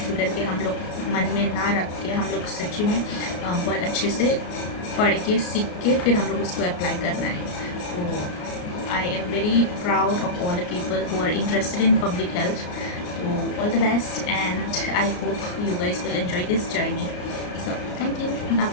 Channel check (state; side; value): late; right; 34 ms